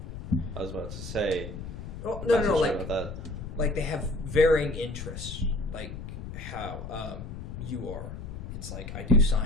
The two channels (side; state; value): left; noise; rumble, 9 dB below the sound